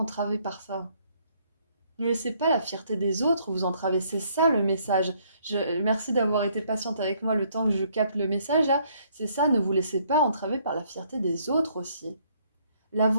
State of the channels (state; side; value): inverted; both; correlation -0.67